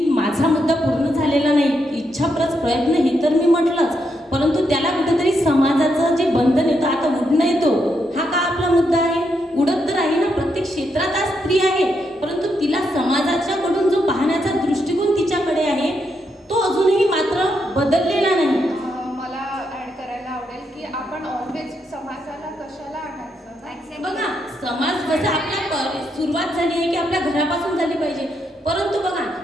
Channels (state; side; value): normal; both; correlation 0.80